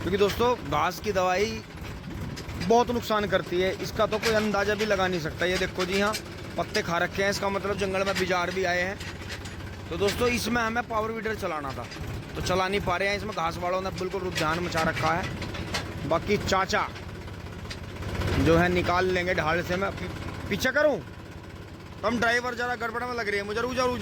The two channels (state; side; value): identical; both; correlation 1.00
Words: दोस्तों घास की दवाई बहुत नुकसान करती है, इसका तो कोई अंदाज़ा भी लगा नहीं सकता। ये देखो जी, यहाँ पत्ते खा रखे हैं, इसका मतलब जंगल में बिजार भी आए हैं। तो दोस्तों इसमें हमें पावर वीडर चलाना था, तो चला नहीं पा रहे हैं। इसमें घास वालों ने बिल्कुल रुझान मचा रखा है। बाकी चाचा जो है निकाल लेंगे ढाल से। मैं पीछे करूँ? हम ड्राइवर ज़रा गड़बड़ में लग रही है मुझे। रुक जाओ रुक